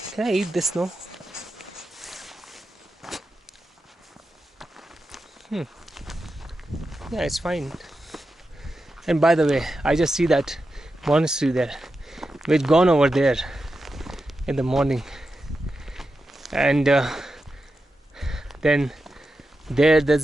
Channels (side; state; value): both; normal; correlation 0.90